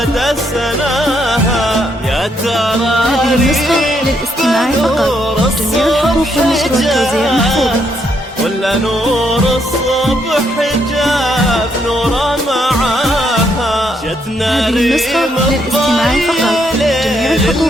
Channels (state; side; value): normal; both; correlation 0.75